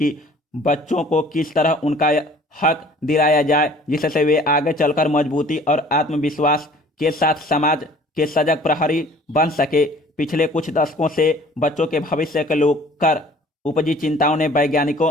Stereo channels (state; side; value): normal; both; correlation 0.51